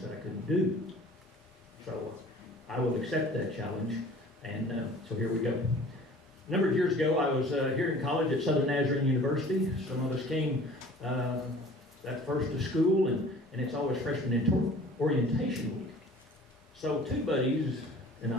I couldn't do. So I will accept that challenge, and so here we go. A number of years ago, I was here in college at Southern Nazarene University. Some of us came that first to school, and it's always freshman orientation week. So 2 buddies and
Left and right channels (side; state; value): both; normal; correlation 0.47